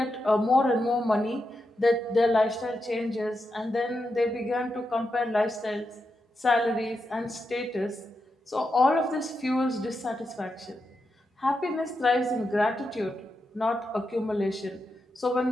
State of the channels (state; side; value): normal; both; correlation 0.86